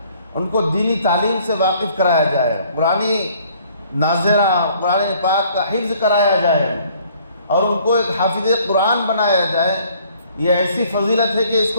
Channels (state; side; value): inverted; both; correlation -0.59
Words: ان کو دینی تعلیم سے واقف کرایا جائے، قرآنی ناظرہ قرآن پاک کا حفظ کرایا جائے اور ان کو ایک حافظ قرآن بنایا جائے۔ یہ ایسی فضیلت ہے کہ اس